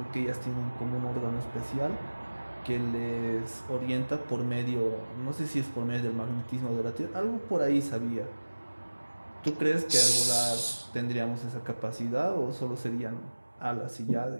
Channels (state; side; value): inverted; both; correlation -1.00